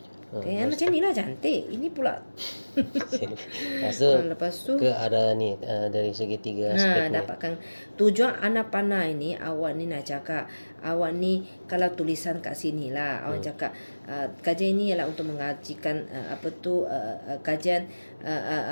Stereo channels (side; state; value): both; inverted; correlation -1.00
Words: Okay, macam ni lah cantik. Ini pula. Lepas tu ke arah ni dari segi 3 aspek ni. Dapatkan tujuan anak panah ini. Awak ni nak cakap, awak ni kalau tulisan kat sini lah, awak cakap kajian ini ialah untuk mengajikan kajian